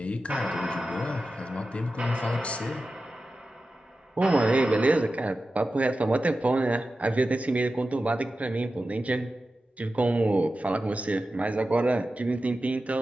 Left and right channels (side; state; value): both; normal; correlation 0.93